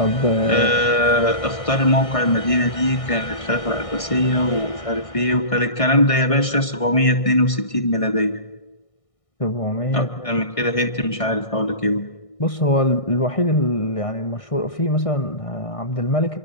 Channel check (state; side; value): late; right; 1.6 ms